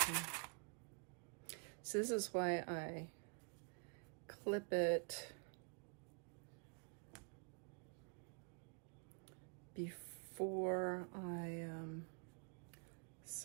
So this is why I clip it before I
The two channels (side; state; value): left; quieter; 38.0 dB